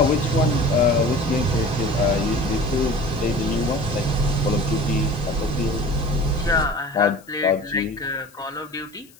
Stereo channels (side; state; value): left; noise; hiss, 27 dB below the sound